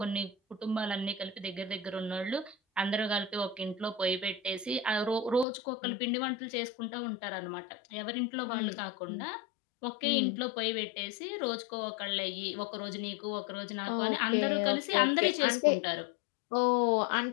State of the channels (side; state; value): right; drops out; at 5.5 s